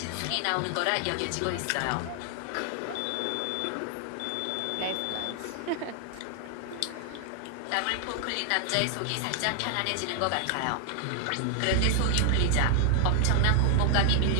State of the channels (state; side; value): different; both; correlation 0.00